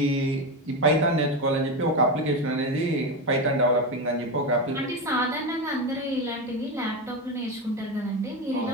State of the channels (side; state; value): both; normal; correlation 0.16